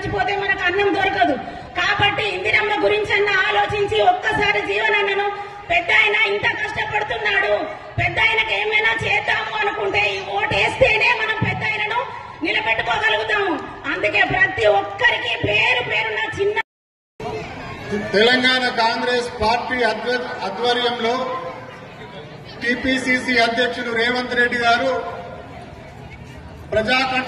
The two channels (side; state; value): both; identical; correlation 1.00